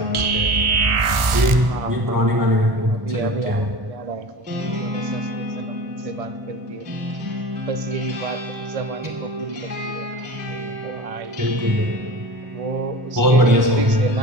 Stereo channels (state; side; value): late; left; 1.4 ms